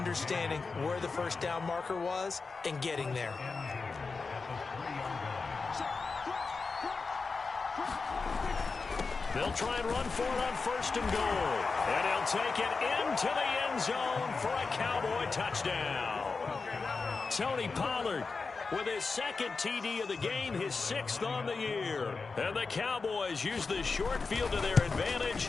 where the first down marker was and getting there. They'll try and run for it on 1st and goal. And he'll take it into the end zone for a Cowboy touchdown. Tony Pollard with his 2nd TD of the game, his 6th on the year. And the Cowboys use the short field to their advantage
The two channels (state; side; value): quieter; right; 4.4 dB